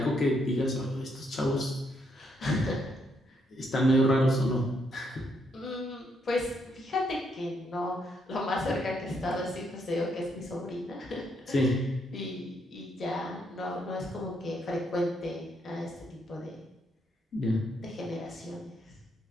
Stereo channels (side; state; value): both; normal; correlation 0.75